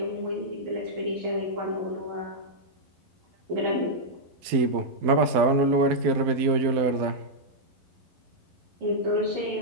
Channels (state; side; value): late; left; 12 ms